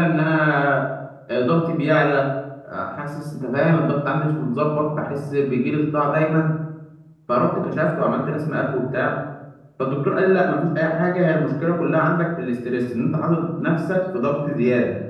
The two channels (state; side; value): identical; both; correlation 1.00